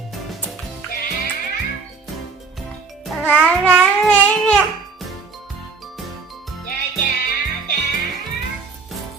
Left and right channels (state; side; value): quieter; left; 4.6 dB